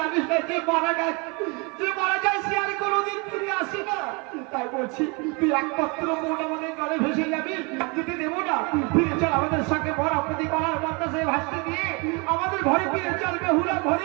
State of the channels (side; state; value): left; quieter; 30.3 dB